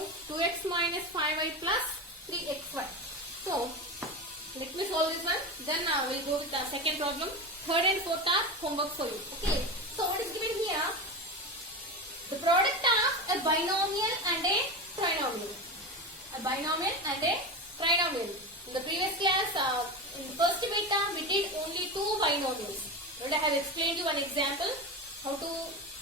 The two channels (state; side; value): normal; both; correlation 0.22